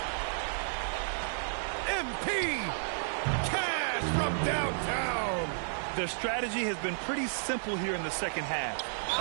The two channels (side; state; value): left; silent; digital silence